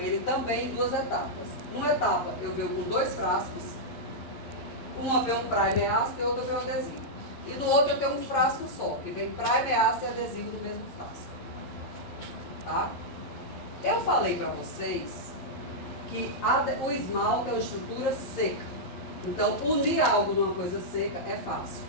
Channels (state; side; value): late; right; 11 ms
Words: também em 2 etapas. Uma etapa eu venho com 2 frascos, uma vem um primer ácido e outra vem um adesivo. E no outro eu tenho um frasco só, que vem primer ácido e adesivo no mesmo frasco. Tá? Eu falei para vocês que o esmalte é uma estrutura seca. Então, unir algo numa coisa seca é fácil.